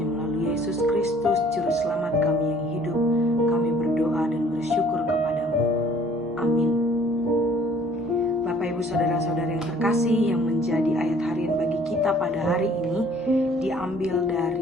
melalui Yesus Kristus, Juru Selamat kami yang hidup, kami berdoa dan bersyukur kepadamu. Amin. Bapak Ibu Saudara-saudara yang terkasih, yang menjadi ayat harian bagi kita pada hari ini diambil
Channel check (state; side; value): normal; both; correlation 0.56